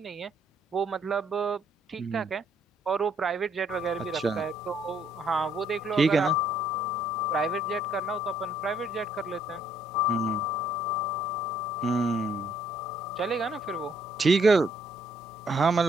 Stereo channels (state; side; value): normal; both; correlation 0.67